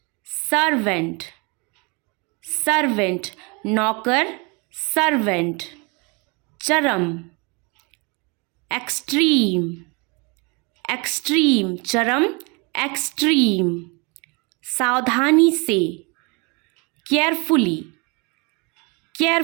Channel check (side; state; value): left; quieter; 30.2 dB